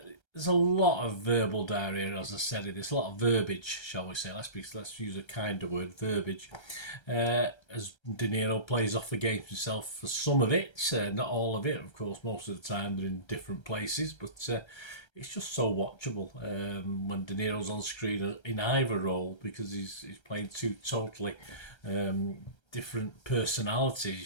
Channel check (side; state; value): right; late; 1.3 ms